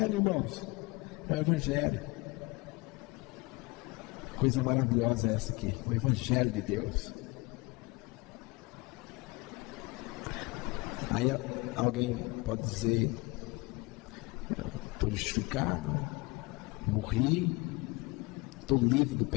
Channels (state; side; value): quieter; right; 25.3 dB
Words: irmãos. É o Evangelho. Coisa maravilhosa é essa aqui, o Evangelho de Deus. Aí alguém pode dizer: estou justificado, morri, estou livre do